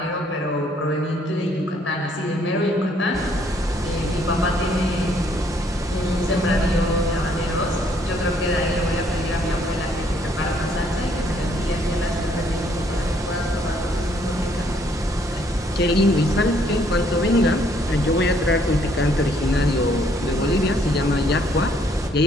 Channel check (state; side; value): normal; both; correlation 0.66